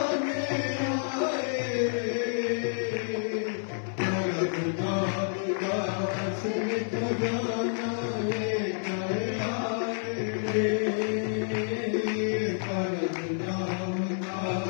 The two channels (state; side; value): silent; right; digital silence